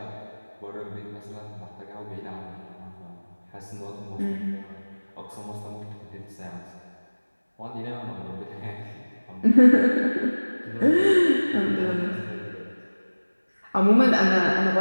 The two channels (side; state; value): both; inverted; correlation -1.00